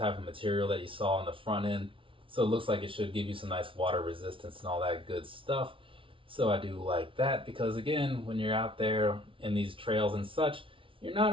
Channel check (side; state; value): left; late; 0.25 ms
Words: of material that you saw on the front end. So it looks like it should give you some nice water resistance and all that good stuff. So I do like that, because again, when you're out there in these trails and such, you're not